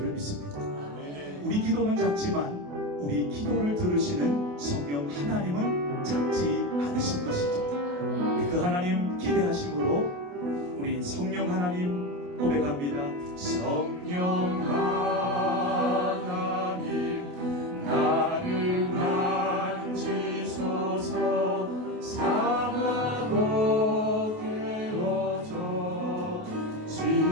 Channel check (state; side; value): late; left; 28 ms